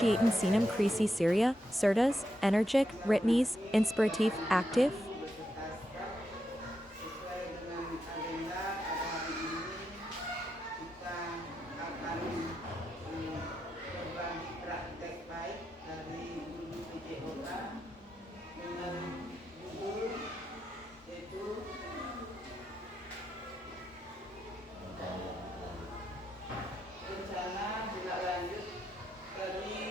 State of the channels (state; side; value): normal; both; correlation 0.84